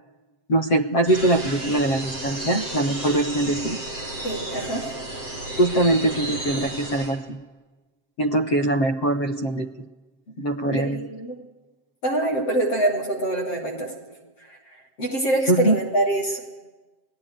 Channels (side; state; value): right; late; 7.6 ms